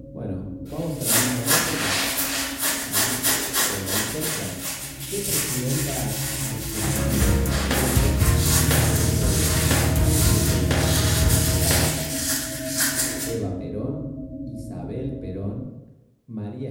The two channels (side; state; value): both; identical; correlation 1.00